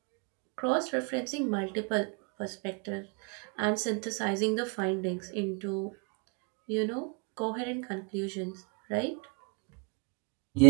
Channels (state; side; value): quieter; left; 33.1 dB